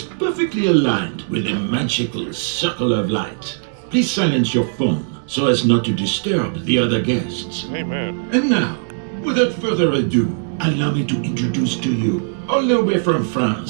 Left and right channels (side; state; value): left; silent; digital silence